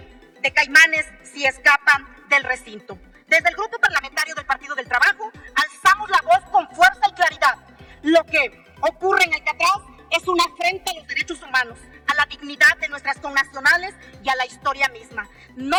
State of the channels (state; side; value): identical; both; correlation 1.00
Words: de caimanes si escapan del recinto. Desde el Grupo Parlamentario del Partido del Trabajo alzamos la voz con fuerza y claridad. Lo que ocurre en Alcatraz es una afrenta a los derechos humanos, a la dignidad de nuestras connacionales y a la historia misma.